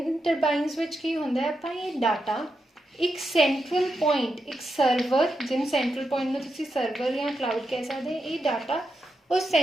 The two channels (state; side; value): normal; both; correlation 0.86